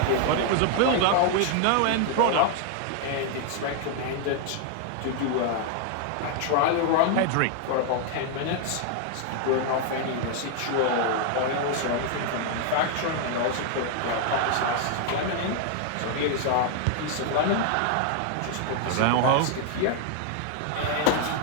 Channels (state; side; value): different; both; correlation 0.00